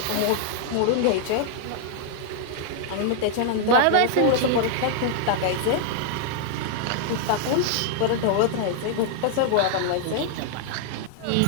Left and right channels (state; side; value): different; both; correlation -0.01